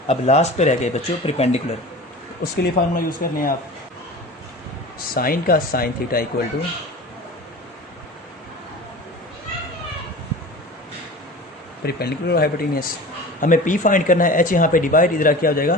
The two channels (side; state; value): both; normal; correlation 0.36